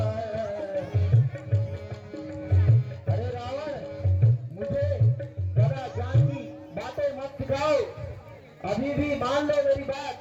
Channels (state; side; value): identical; both; correlation 1.00